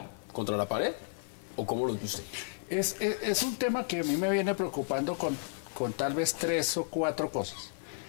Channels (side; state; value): right; silent; 56 dB below the other